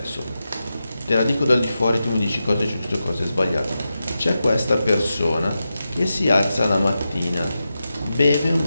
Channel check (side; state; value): both; inverted; correlation -0.90